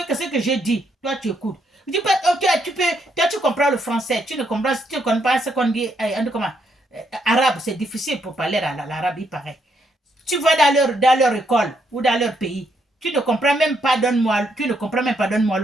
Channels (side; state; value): both; normal; correlation 0.75